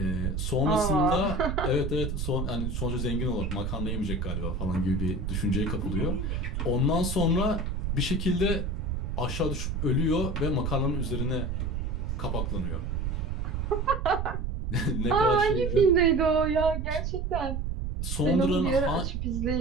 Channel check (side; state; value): right; noise; rumble, 2 dB below the sound